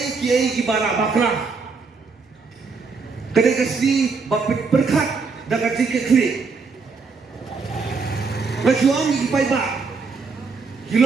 ki bara bakra Kadai kasih bapit berkat dapat tiket klik. Majuang di pai ba,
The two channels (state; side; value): quieter; left; 4.7 dB